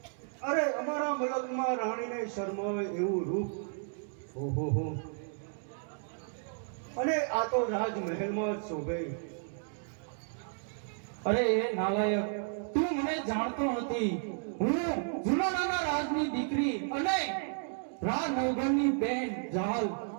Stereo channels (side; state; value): left; silent; digital silence